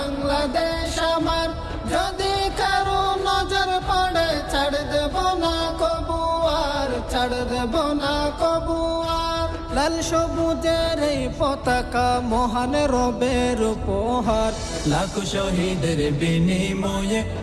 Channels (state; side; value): identical; both; correlation 1.00